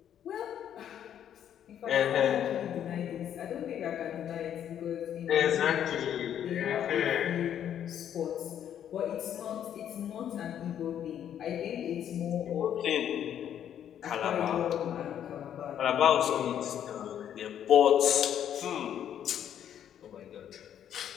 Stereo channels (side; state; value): right; quieter; 9.9 dB